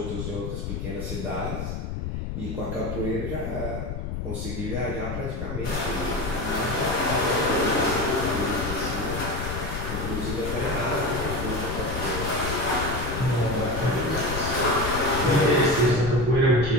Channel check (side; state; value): left; noise; rumble, 4 dB below the sound